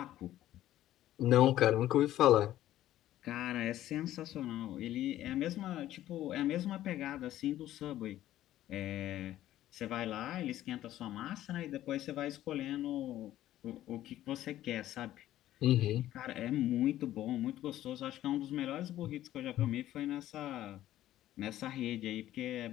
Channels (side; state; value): right; quieter; 13.5 dB